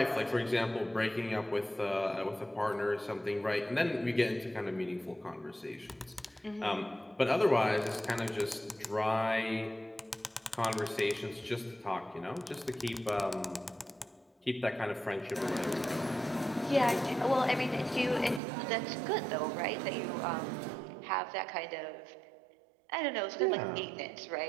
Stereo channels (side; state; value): left; drops out; at 18.4 s